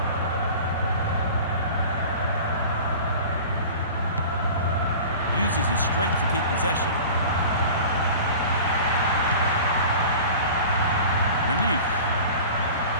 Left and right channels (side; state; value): both; inverted; correlation -0.39